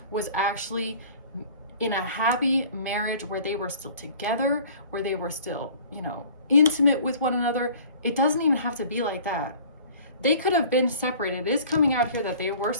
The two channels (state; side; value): inverted; both; correlation -0.48